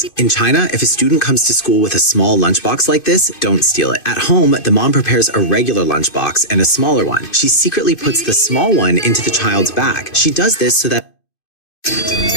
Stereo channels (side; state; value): right; late; 2.5 ms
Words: In China, if a student comes to school with a small lunchbox like this, don't steal it. At home, the mom prepares a regular lunchbox and a smaller one. She secretly puts the small one into the child's bag. She does this so that...